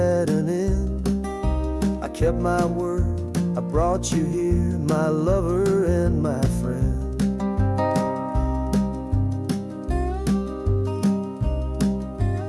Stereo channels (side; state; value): both; identical; correlation 1.00